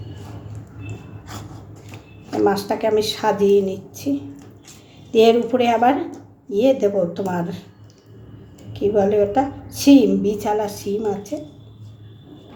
মাছটাকে আমি সাজিয়ে নিচ্ছি, দিয়ে এর উপরে আবার দেবো, তোমার কী বলে ওটা, শিম, বিছালা শিম আছে,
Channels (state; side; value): identical; both; correlation 1.00